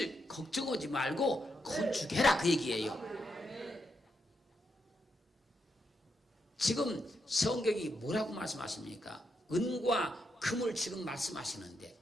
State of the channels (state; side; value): normal; both; correlation 0.82